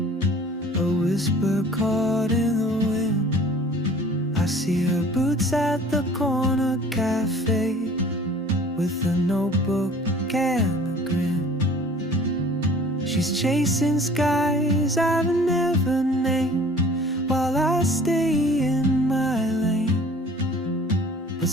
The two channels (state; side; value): normal; both; correlation 0.49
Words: a whisper caught in the wind. I see her boots at the corner cafe, with a notebook and a grin. She's chasing skies I've never named, while I stay in my lane. But